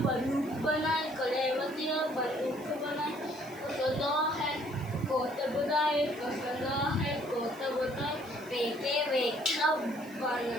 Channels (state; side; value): noise; right; hiss, 22 dB below the sound